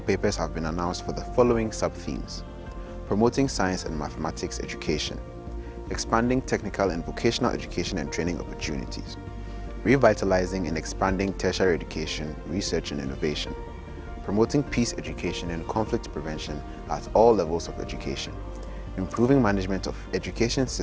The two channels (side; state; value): both; identical; correlation 1.00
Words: papers have been announced for the following sub-themes: promoting science and mathematics education, expanding technical and vocational education and training opportunities, revitalizing and expanding tertiary education, research and innovation, promoting peace education and conflict prevention at all levels of education, improving management of education